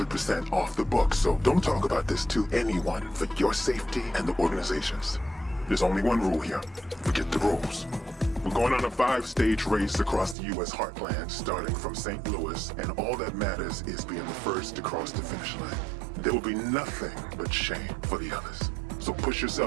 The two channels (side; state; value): left; drops out; at 10.4 s